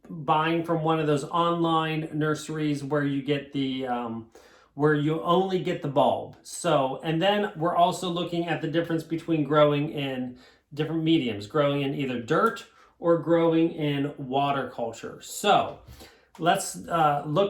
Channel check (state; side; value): identical; both; correlation 1.00